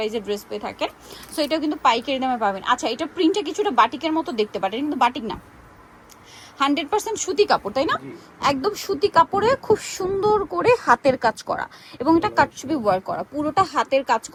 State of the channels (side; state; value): both; identical; correlation 1.00